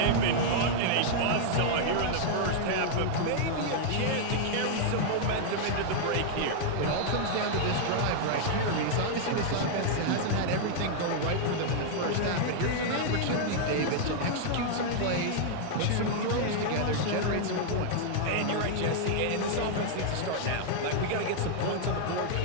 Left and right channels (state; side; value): different; both; correlation -0.01